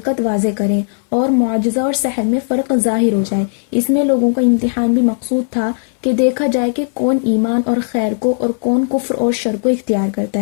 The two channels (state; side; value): silent; right; 62 dB below the other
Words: واضح کریں اور معجزہ اور سحر میں فرق ظاہر ہو جائے۔ اس میں لوگوں کا امتحان بھی مقصود تھا کہ دیکھا جائے کہ کون ایمان اور خیر کو اور کون کفر اور شر کو اختیار کرتا